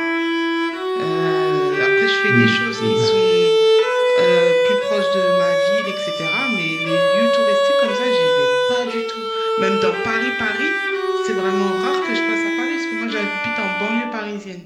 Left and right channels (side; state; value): both; identical; correlation 1.00